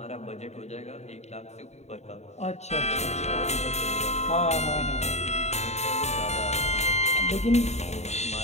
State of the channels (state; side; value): late; right; 0.32 ms